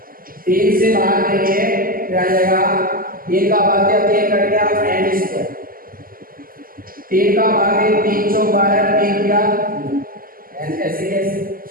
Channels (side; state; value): left; late; 0.42 ms